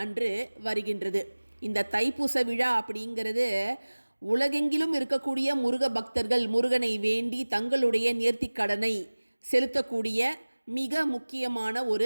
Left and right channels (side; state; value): both; inverted; correlation -1.00